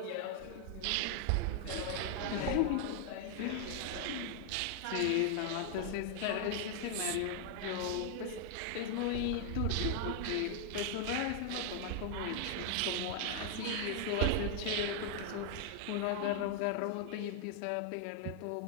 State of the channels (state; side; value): different; both; correlation 0.00